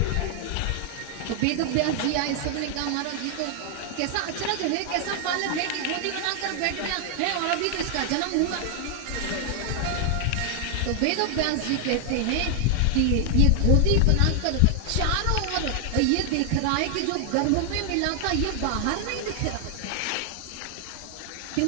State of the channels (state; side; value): different; both; correlation 0.00